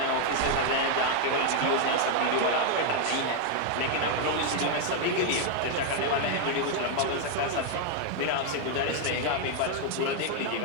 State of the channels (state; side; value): different; both; correlation 0.00